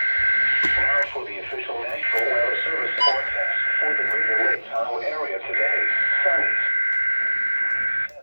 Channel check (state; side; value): inverted; both; correlation -1.00